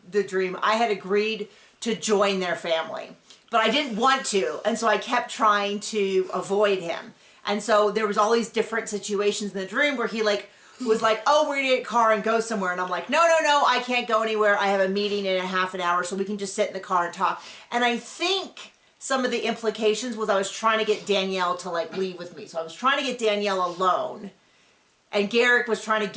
dream, I had agreed to join their family. But I didn't want to, and so I kept trying to avoid him. And so there was all these different situations in the dream where he was like, oh, we're gonna get a car and go somewhere. And I'm like, no, I can't go anywhere. I have a meeting in a half an hour, so we can just sit in the car and talk. And I think some of the implications was I was trying to get Danielle to leave with me. So I was trying to get Danielle alone. And Garrick was trying to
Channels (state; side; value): identical; both; correlation 1.00